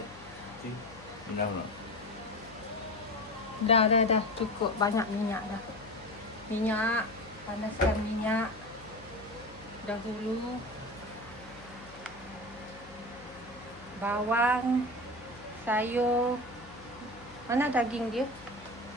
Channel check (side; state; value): left; noise; hum, 19 dB below the sound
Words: Dah cukup banyak minyak dah. Minyak, panaskan minyak dahulu. Bawang, sayur. Mana daging dia?